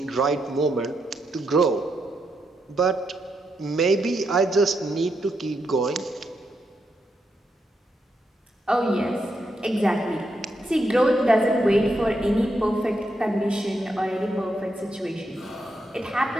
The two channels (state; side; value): normal; both; correlation 0.82